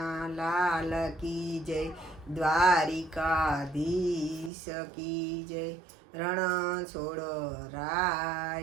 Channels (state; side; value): drops out; left; at 4.5 s